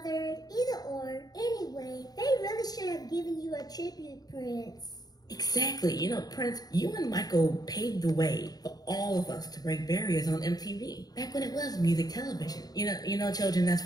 either or. Anyway, they really should have given you a tribute, Prince. Exactly. You know, Prince, you and Michael paved the way for all of us to break barriers on MTV. Back when it was music television. You know, children, that's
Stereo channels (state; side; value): late; right; 0.19 ms